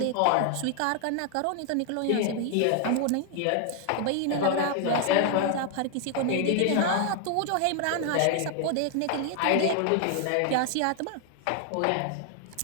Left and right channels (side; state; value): both; different; correlation 0.00